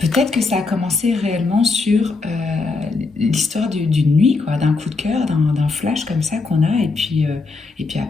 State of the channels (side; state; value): right; quieter; 3.9 dB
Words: que ça a commencé réellement sur l'histoire d'une nuit, quoi, d'un coup de cœur, d'un flash comme ça qu'on a, et puis